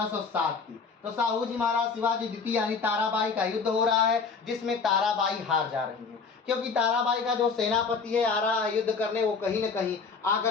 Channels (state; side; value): quieter; right; 5.1 dB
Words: की। तो साहू जी महाराज शिवाजी द्वितीय यानी ताराबाई का युद्ध हो रहा है, जिसमें ताराबाई हार जा रही है, क्योंकि ताराबाई का जो सेनापति है आ रहा है युद्ध करने, वो कहीं न कहीं